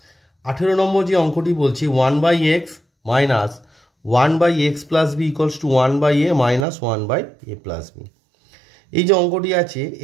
18 নম্বর যে অঙ্কটি বলছি 1 by x minus 1 by x plus b equals to 1 by a minus 1 by a plus b, এই যে অঙ্কটি আছে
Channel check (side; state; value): left; drops out; at 6.7 s